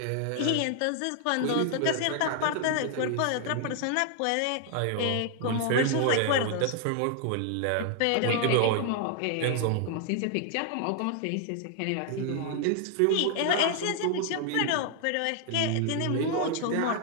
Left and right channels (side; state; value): both; different; correlation 0.00